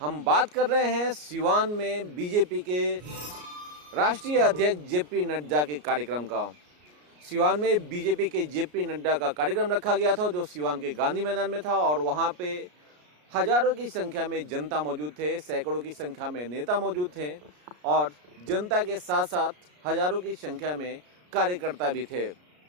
बात कर रहे हैं सीवान में बीजेपी के राष्ट्रीय अध्यक्ष जेपी नड्डा के कार्यक्रम का। सीवान में बीजेपी के जेपी नड्डा का कार्यक्रम रखा गया था जो सीवान के गांधी मैदान में था और वहां पे हजारों की संख्या में जनता मौजूद थे, सैकड़ों की संख्या में नेता मौजूद थे और जनता के साथ साथ हजारों की संख्या में कार्यकर्ता भी थे।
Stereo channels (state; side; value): late; left; 33 ms